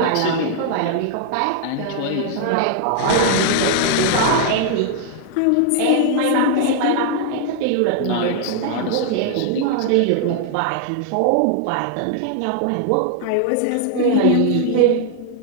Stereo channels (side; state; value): both; different; correlation -0.01